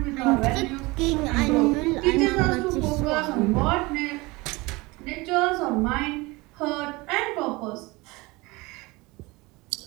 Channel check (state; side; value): quieter; left; 23.3 dB